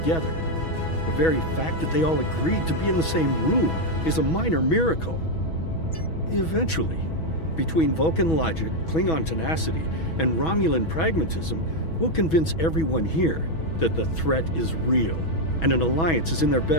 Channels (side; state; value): right; late; 6.2 ms